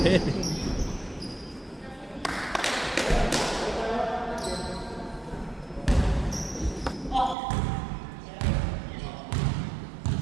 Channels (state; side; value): drops out; left; at 7.4 s